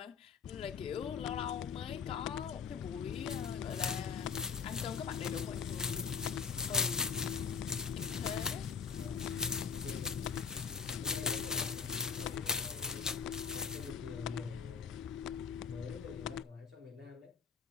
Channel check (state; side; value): quieter; right; 5.9 dB